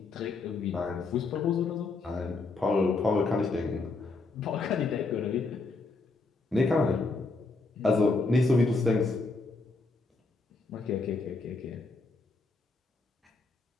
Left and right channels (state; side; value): quieter; right; 3.7 dB